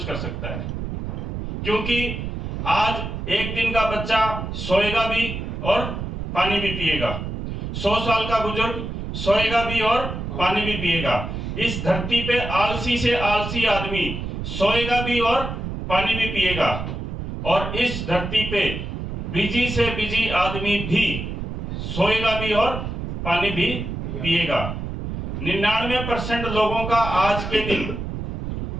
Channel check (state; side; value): noise; right; rumble, 5 dB below the sound